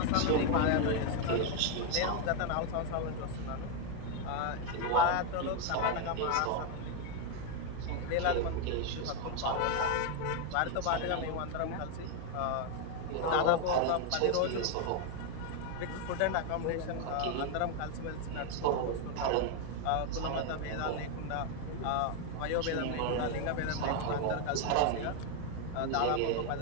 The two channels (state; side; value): different; both; correlation 0.01